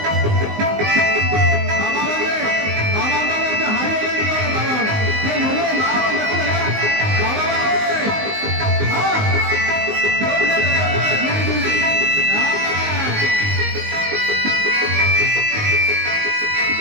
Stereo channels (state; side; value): late; left; 19 ms